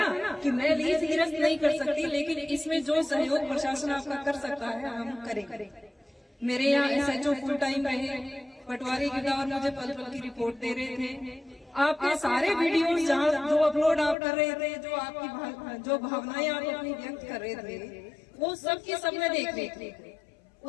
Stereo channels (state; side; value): drops out; right; at 14.2 s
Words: कि मैं लीज निरस्त नहीं कर सकती, लेकिन इसमें जो सहयोग प्रशासन आपका कर सकता है हम करें। मेरे यहाँ SHO फुल टाइम रहे, पटवारी गिरदावर मुझे पल पल की रिपोर्ट दे रहे थे। आपके सारे वीडियोस जहाँ जो अपलोड आप कर रहे थे, जो आपकी जो भावनाएं आप अपनी व्यक्त कर रहे थे, वो सब की सब मैं देख रही थी।